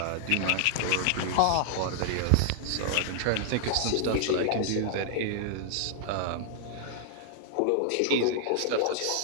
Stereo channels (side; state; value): both; different; correlation -0.01